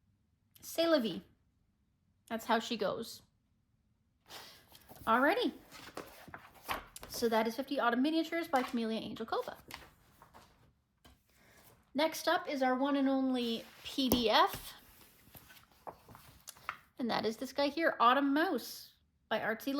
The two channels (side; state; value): both; identical; correlation 1.00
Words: c'est la vie. That's how she goes. Alrighty. So that is 50 Autumn Miniatures by Camellia Angel Cova. Next up is our one and only PDF, and that is this guy here, Autumn Mouse by Artsy